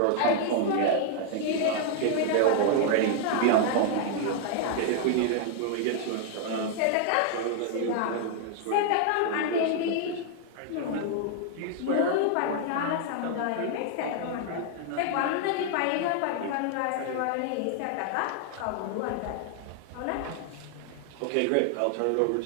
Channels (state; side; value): different; both; correlation 0.00